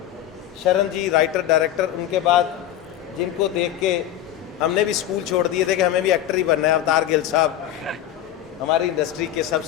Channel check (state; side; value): quieter; right; 11.8 dB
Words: शरण जी राइटर डायरेक्टर, उनके बाद जिनको देख के हमने भी स्कूल छोड़ दिए थे कि हमें भी एक्टर ही बनना है, अवतार गिल साहब हमारी इंडस्ट्री के